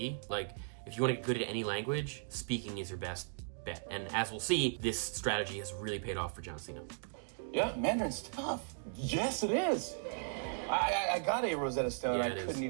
Like, if you want to get good at any language, speaking is your best bet. And as we'll see, this strategy has really paid off for John Cena. Yeah. Mandarin's tough. Yes, it is. I got a Rosetta Stone. Yeah, I couldn't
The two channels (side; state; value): left; silent; digital silence